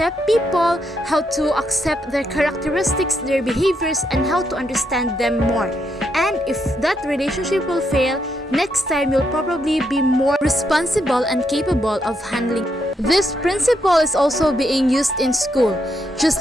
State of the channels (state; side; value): normal; both; correlation 0.79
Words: people, how to accept their characteristics, their behaviors, and how to understand them more. And if that relationship will fail, next time you'll probably be more responsible and capable of handling. This principle is also being used in school,